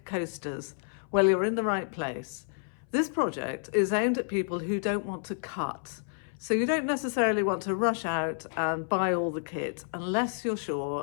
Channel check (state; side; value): silent; right; 58 dB below the other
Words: coasters? Well, you're in the right place. This project is aimed at people who don't want to cut. So you don't necessarily want to rush out and buy all the kit unless you're